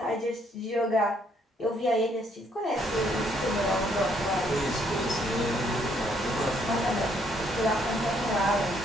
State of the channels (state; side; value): normal; both; correlation 0.69